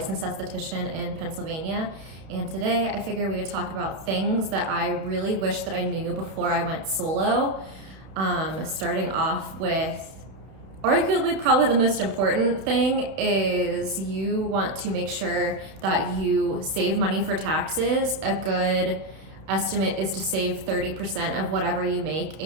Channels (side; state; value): left; late; 31 ms